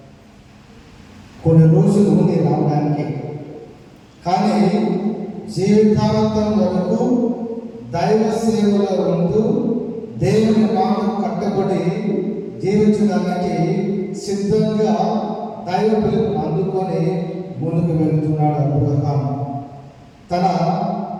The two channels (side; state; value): both; identical; correlation 1.00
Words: కొన్ని రోజులు ఉంది రావడానికి, కానీ జీవితాంతం వరకు దైవ సేవలో ఉంటూ దేవుని మాట కట్టబడి జీవించడానికి సిద్ధంగా దైవ పిలుపును అందుకొని ముందుకు వెళ్తున్నాడు అబ్రహాం. తన